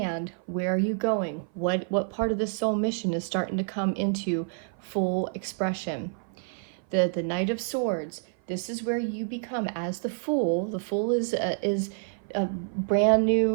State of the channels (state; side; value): silent; left; 56 dB below the other